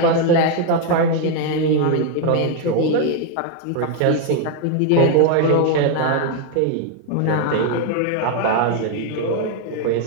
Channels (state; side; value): different; both; correlation 0.01